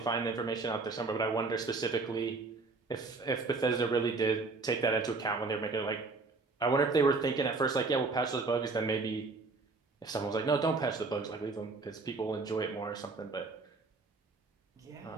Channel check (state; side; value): quieter; left; 3.9 dB